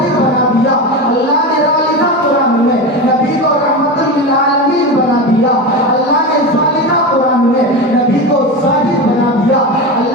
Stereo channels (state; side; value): normal; both; correlation 0.21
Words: बना दिया। अल्लाह ने ता लिखा कुरान में, नबी को रहमतुल लिल आलमीन बना दिया। अल्लाह ने सा लिखा कुरान में, नबी को साजिद बना दिया।